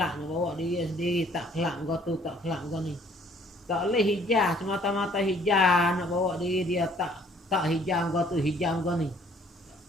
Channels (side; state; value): both; normal; correlation 0.59